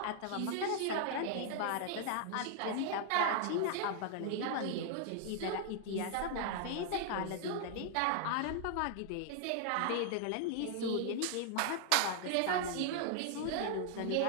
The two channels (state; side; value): different; both; correlation 0.00